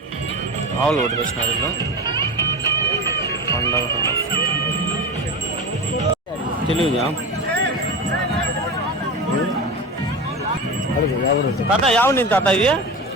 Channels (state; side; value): normal; both; correlation 0.26